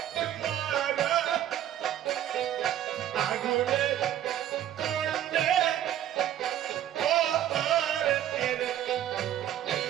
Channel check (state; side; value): quieter; left; 11.5 dB